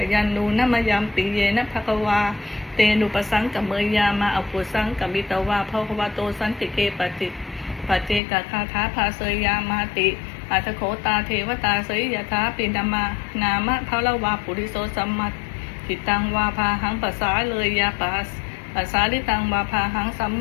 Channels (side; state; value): right; drops out; at 8.2 s